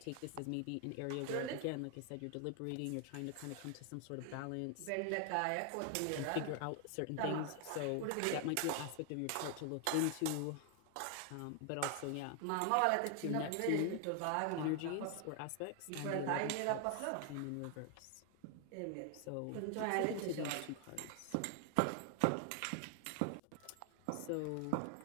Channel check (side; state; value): both; different; correlation 0.00